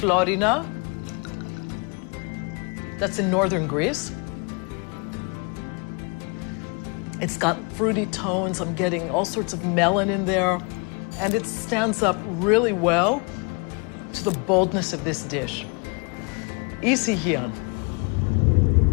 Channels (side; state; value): right; quieter; 33.5 dB